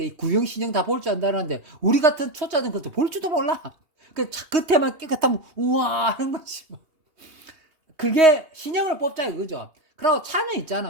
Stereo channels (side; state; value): left; late; 2.8 ms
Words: 구형 신형 다 볼 줄 안다는데 우리 같은 초짜는 그것도 볼 줄도 몰라. 그 차 끝에만 깨끗하면 우와 하는 거지 뭐. 그게 신형을 뽑자 이거죠. 그리고 차는